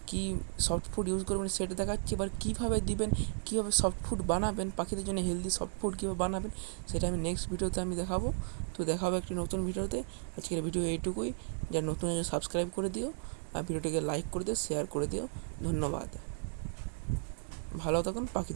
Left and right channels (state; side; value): silent; left; digital silence